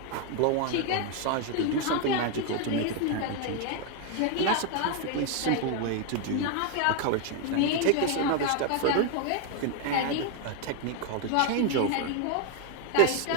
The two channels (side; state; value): both; different; correlation 0.01